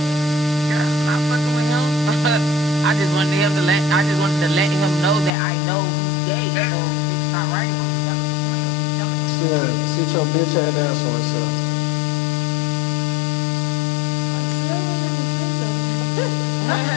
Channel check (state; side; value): drops out; right; at 5.3 s